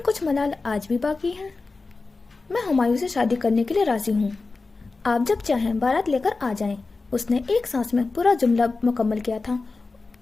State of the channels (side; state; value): right; quieter; 3.8 dB